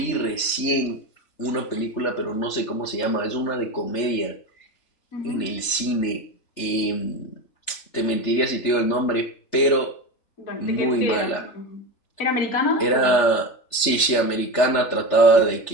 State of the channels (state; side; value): late; right; 3.4 ms